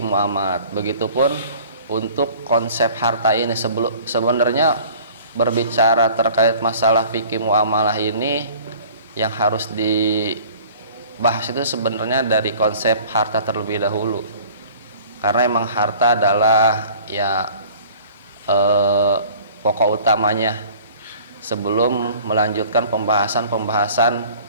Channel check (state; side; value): inverted; both; correlation -0.48